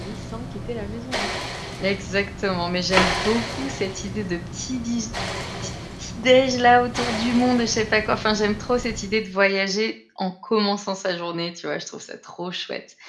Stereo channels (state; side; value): identical; both; correlation 1.00